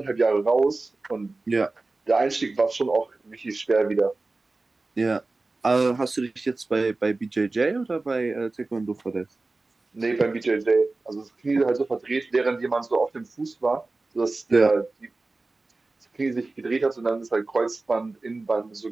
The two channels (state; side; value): quieter; left; 3.4 dB